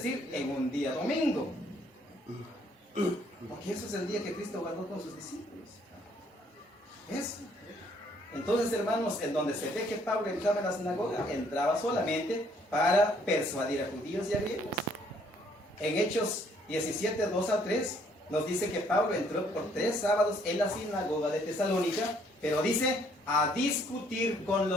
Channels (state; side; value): normal; both; correlation 0.65